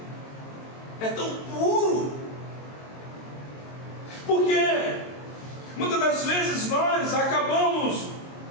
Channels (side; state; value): right; late; 22 ms